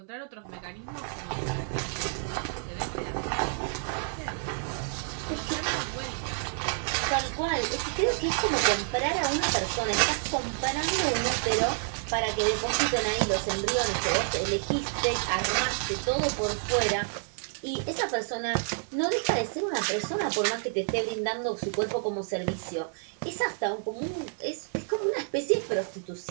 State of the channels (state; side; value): silent; left; digital silence